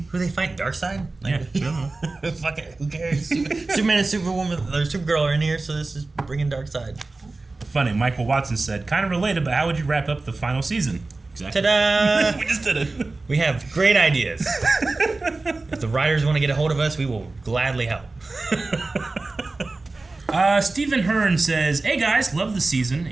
they fight? Darkseid? Like, Yeah. Fuck it. Who cares? Superman and Superwoman or Supergirl are in here, so this is bringing Darkseid. Funny, Michael Watson said, kind of related, but how would you wrap up the final season? Exactly. Ta-da! We just did it. We have great ideas. If the writers want to get a hold of us, we will gladly help. Stephen Hearn says, hey guys, love the season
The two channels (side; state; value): left; quieter; 3.4 dB